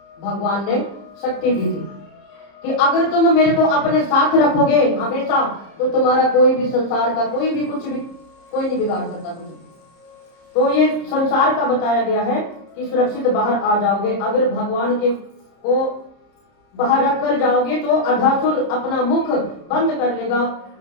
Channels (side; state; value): right; late; 30 ms